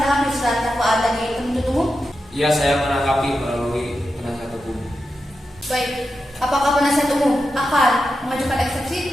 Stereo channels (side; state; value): both; normal; correlation 0.89